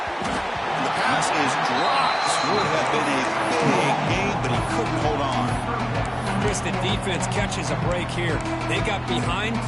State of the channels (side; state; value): both; identical; correlation 1.00